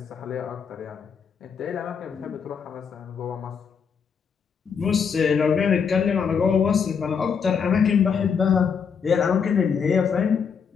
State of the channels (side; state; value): right; quieter; 6.5 dB